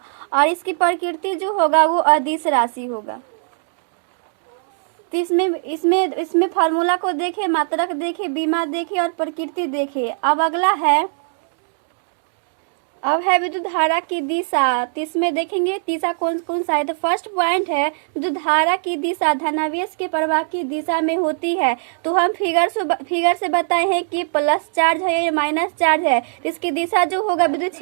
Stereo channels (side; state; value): left; silent; digital silence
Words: और इसकी प्रकृति जो होगा वो अदिश राशि होगा। तो इसमें फार्मूला को देखे, मात्रक देखे, बीमा देखे और प्रकृति देखे। अब अगला है, अब है विद्युत धारा की दिशा। तो इसमें देखेंगे दिशा कौन सा है। तो फर्स्ट पॉइंट है विद्युत धारा की दिशा धनावेश के प्रवाह की दिशा में होती है। तो हम फिगर से बताए हैं कि प्लस चार्ज है या माइनस चार्ज है। तो इसकी दिशा जो होगा, विद्युत